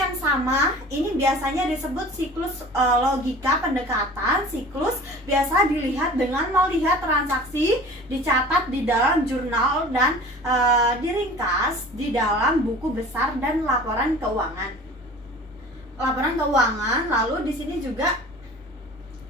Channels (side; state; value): both; normal; correlation 0.42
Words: sama. Ini biasanya disebut siklus logika pendekatan. Siklus biasa dilihat dengan melihat transaksi dicatat di dalam jurnal dan diringkas di dalam buku besar dan laporan keuangan. Lalu di sini juga